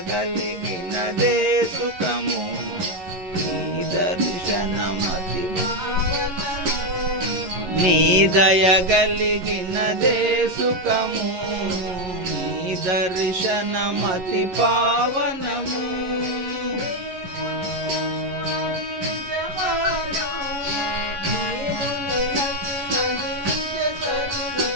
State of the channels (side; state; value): left; late; 11 ms